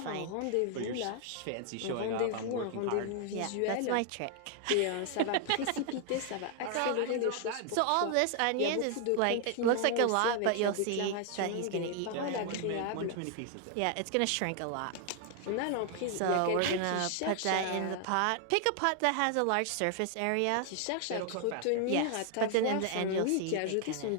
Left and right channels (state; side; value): different; both; correlation 0.00